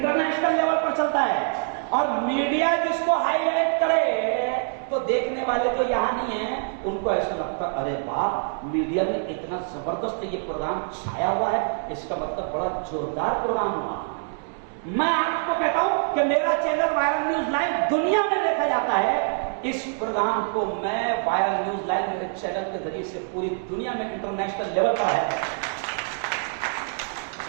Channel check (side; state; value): left; silent; 62 dB below the other